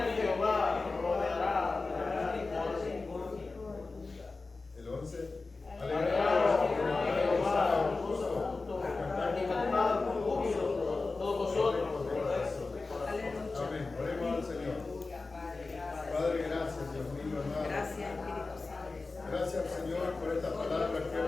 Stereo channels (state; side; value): quieter; right; 3.7 dB